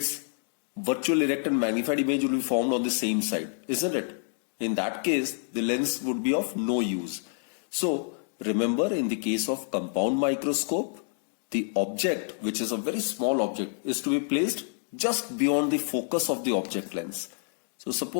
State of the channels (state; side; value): silent; right; digital silence